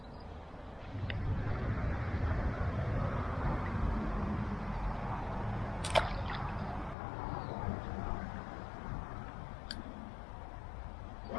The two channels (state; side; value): drops out; right; at 7.0 s